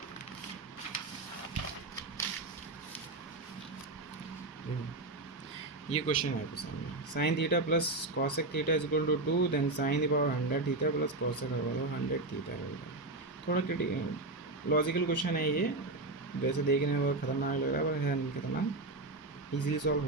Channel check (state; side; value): quieter; left; 3.0 dB